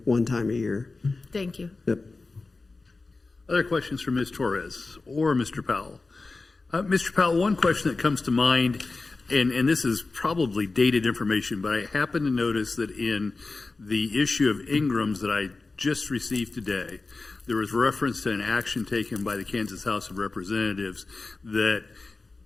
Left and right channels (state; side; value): quieter; right; 3.7 dB